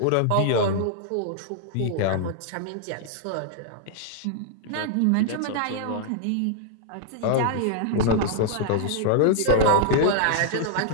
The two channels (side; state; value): both; different; correlation 0.00